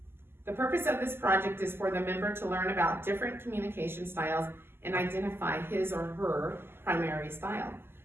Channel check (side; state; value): left; late; 0.11 ms